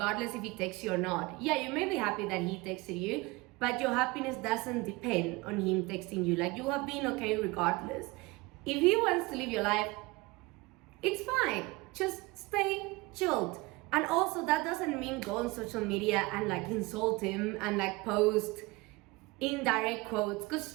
if he texts you or not. Yeah, you may be happy that he texted you, but your happiness doesn't depend on him texting you. Like, you have been okay regardless. If he wants to live your life, it's fine. Just stay chilled. And also, that doesn't mean go on social media and like insult him and like post indirect quotes, because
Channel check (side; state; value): left; quieter; 23.3 dB